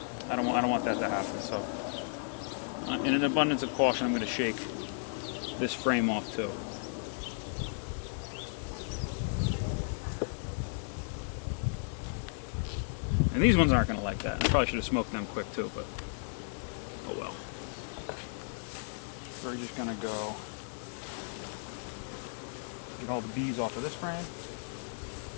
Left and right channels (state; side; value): silent; right; 55 dB below the other